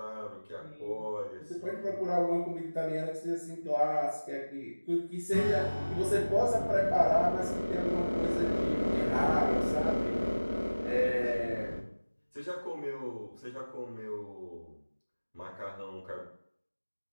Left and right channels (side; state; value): both; inverted; correlation -1.00